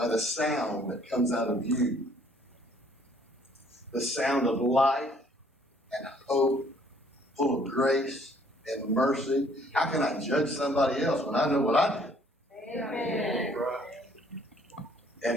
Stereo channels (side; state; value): both; normal; correlation 0.61